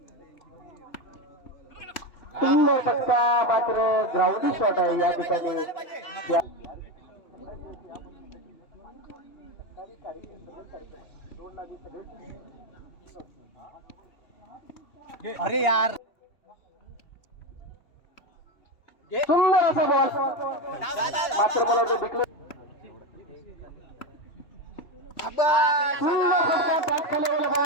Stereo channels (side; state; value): right; late; 2.8 ms